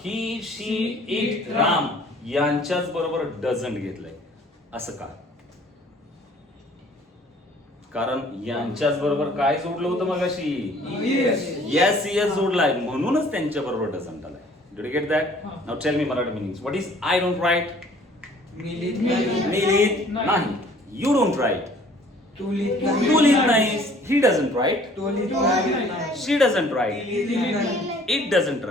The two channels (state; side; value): normal; both; correlation 0.55